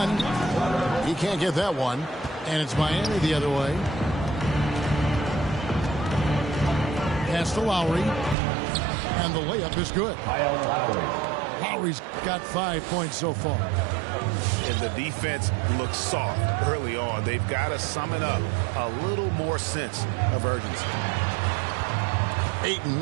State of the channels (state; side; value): drops out; left; at 8.3 s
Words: He can't get that one. And it's Miami the other way. Pass to Lowry. And the layup is good. Lowry's got 5 points so far. And the defense looks soft early on. They've got to summon up a little more sense of urgency.